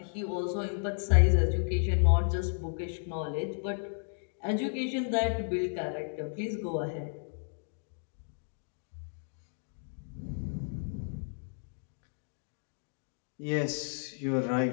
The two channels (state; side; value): silent; right; digital silence